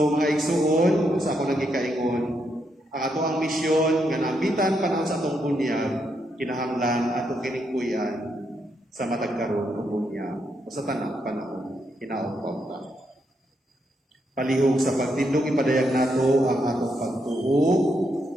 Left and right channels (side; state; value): both; normal; correlation 0.79